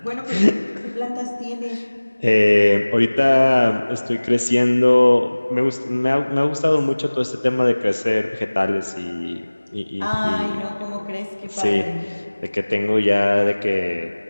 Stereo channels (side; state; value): both; inverted; correlation -1.00